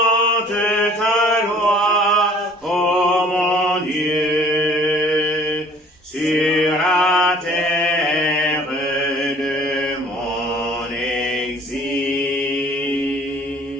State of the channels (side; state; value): both; normal; correlation 0.53